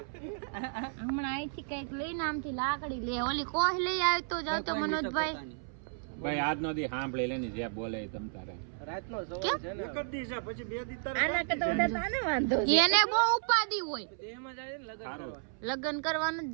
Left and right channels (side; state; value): left; silent; 56 dB below the other